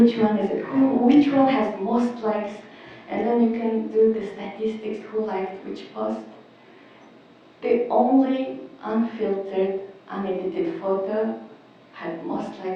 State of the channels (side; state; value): both; identical; correlation 1.00